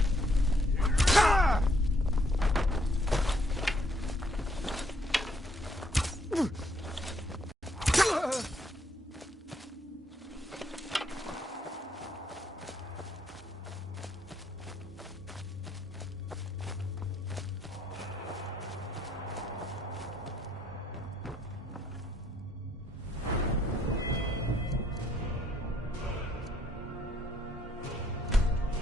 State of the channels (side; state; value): both; normal; correlation 0.70